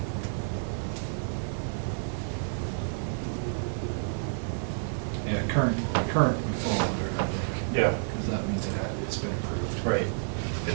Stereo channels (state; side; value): silent; left; digital silence